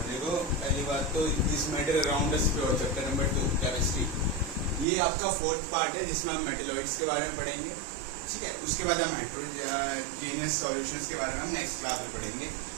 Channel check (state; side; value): drops out; left; at 4.9 s